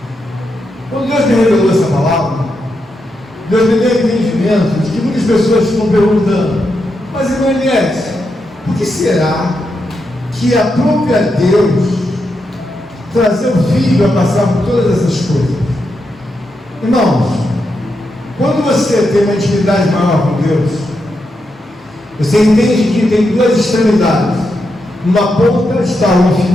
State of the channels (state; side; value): normal; both; correlation 0.84